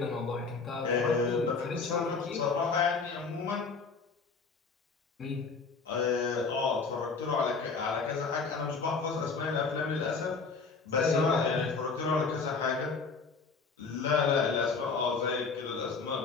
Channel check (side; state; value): right; quieter; 4.7 dB